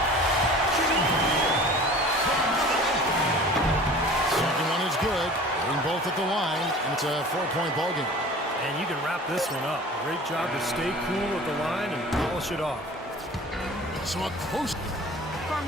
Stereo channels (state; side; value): normal; both; correlation 0.43